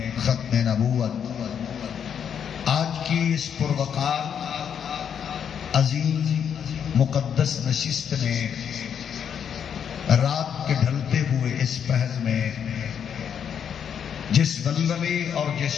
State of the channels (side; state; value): right; quieter; 8.0 dB